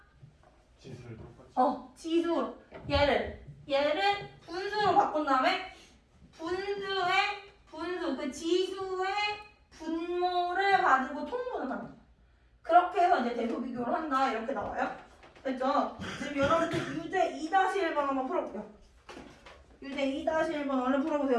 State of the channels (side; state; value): both; identical; correlation 1.00